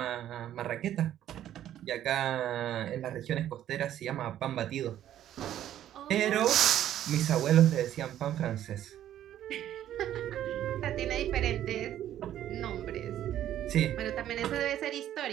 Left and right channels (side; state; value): left; quieter; 11.7 dB